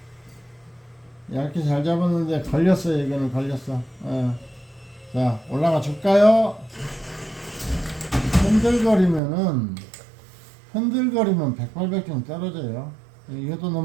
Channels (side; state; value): left; drops out; at 9.2 s